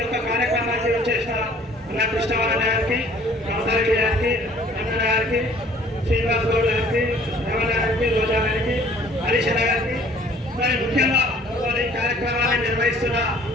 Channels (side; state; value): both; normal; correlation 0.55